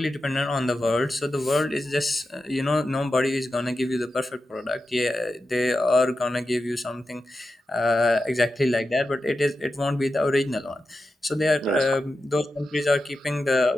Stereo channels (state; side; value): normal; both; correlation 0.90